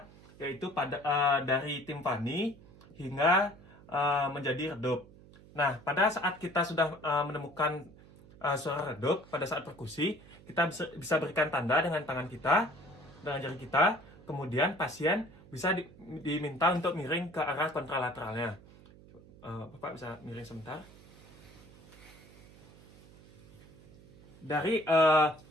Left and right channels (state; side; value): noise; right; hum, 22 dB below the sound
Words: yaitu dari timpani hingga menjadi redup. Nah, pada saat kita sudah menemukan suara redup pada saat perkusi, kita bisa berikan tanda dengan tangan kita, dengan jari kita, kemudian pasien bisa diminta untuk miring ke arah kontralateralnya. Bapak bisa miring sebentar. Dari